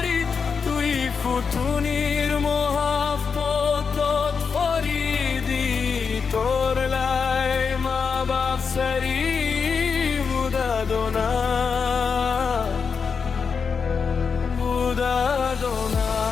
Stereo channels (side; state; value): right; quieter; 5.7 dB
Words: tui futunir mohabbatot faridi. Tor lai ma bap sari budadona, budadona.